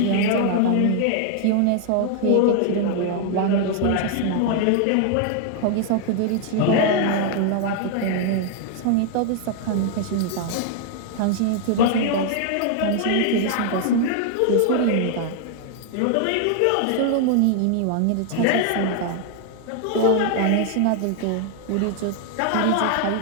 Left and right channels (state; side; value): different; both; correlation 0.00